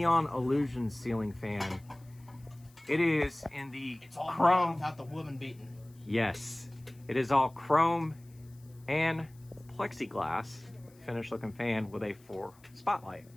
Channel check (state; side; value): noise; left; hiss, 29 dB below the sound